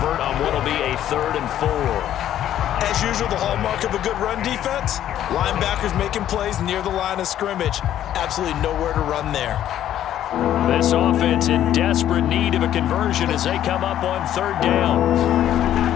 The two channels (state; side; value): quieter; right; 11.5 dB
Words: on what will be a 3rd and 4. As usual, the hallmark of a good run defense, linebackers making plays near the line of scrimmage. Absolutely nowhere to run there. This offense in desperate need of a conversion as they come up on 3rd down.